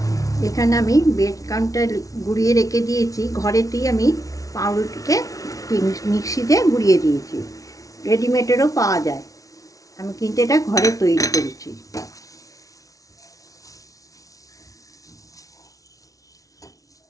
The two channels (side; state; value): right; late; 0.17 ms